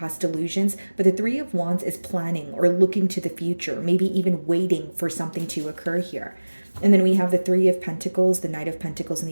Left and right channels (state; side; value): inverted; both; correlation -1.00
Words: illusions, but the Three of Wands is planning or looking to the future, maybe even waiting for something to occur here. And then we have the Three of Pentacles, the Knight of Pentacles, and